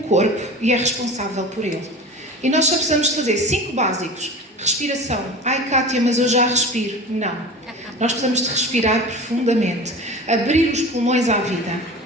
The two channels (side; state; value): both; normal; correlation 0.34